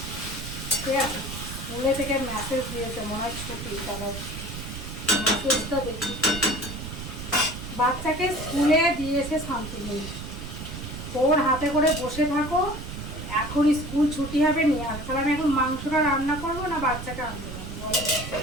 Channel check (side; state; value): right; noise; rumble, 9 dB below the sound